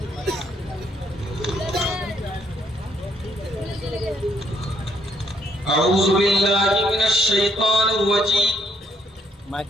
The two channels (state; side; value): normal; both; correlation 0.69